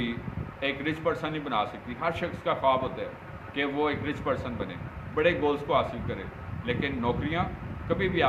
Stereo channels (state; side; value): identical; both; correlation 1.00